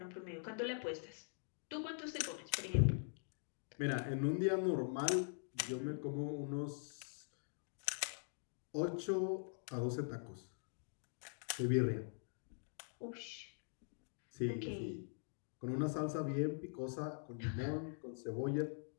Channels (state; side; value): silent; right; digital silence